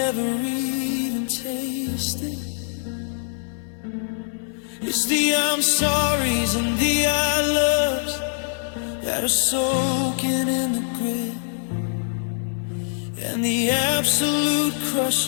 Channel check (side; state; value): right; silent; digital silence